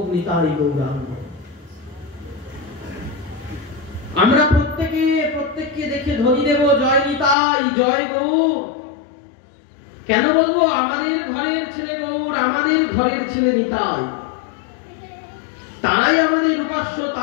নিতাই গৌরাঙ্গ। আমরা প্রত্যেককে দেখে ধ্বনি দেব জয় নিতাই, জয় গৌর। কেন বলবো? আমাদের ঘরের ছেলে গৌর, আমাদের ঘরের ছেলে নিতাই। তারাই আমাদের উপাস্য,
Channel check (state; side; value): drops out; right; at 7.4 s